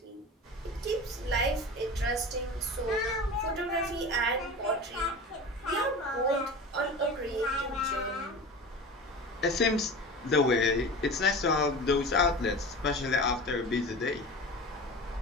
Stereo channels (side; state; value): both; normal; correlation 0.33